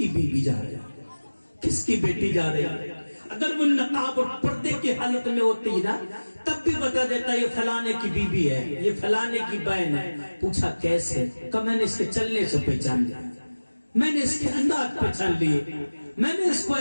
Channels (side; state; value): both; inverted; correlation -1.00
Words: بیوی جا رہی ہے, کس کی بیٹی جا رہی ہے. اگر وہ نقاب اور پردے کی حالت میں ہوتی نا تب بھی بتا دیتا یہ فلانے کی بیوی ہے, یہ فلانے کی بہن ہے. پوچھا کیسے؟ کہ میں نے اس کے چلنے سے پہچان لیا, میں نے اس کے انداز پہچان لیے, میں نے اس کو